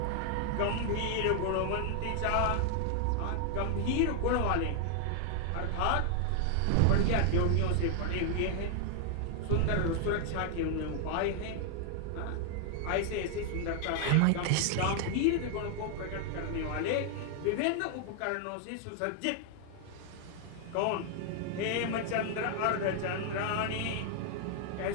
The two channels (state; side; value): different; both; correlation 0.00